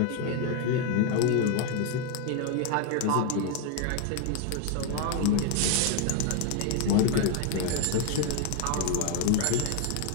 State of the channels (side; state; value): both; different; correlation 0.01